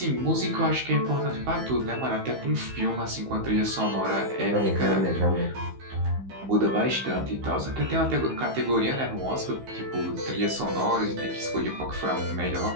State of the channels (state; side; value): late; left; 15 ms